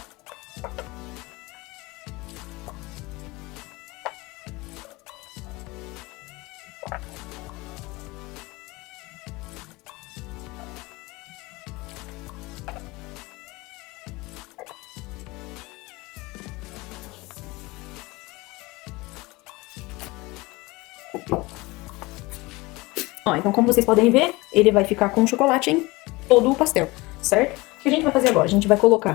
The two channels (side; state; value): right; quieter; 22.7 dB